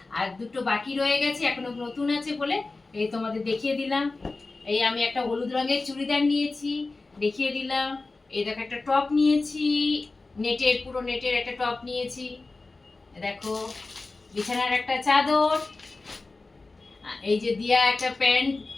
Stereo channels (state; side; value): quieter; right; 3.5 dB